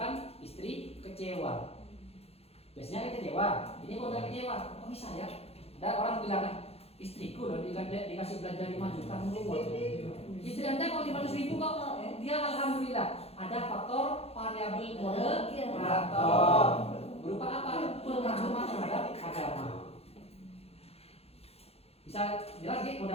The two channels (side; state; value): right; late; 0.29 ms